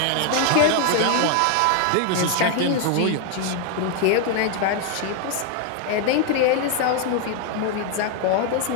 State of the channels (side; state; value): both; different; correlation 0.00